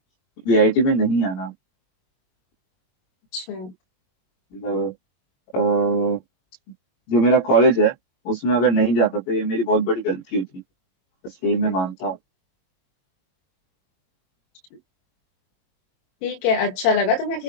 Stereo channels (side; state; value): right; late; 22 ms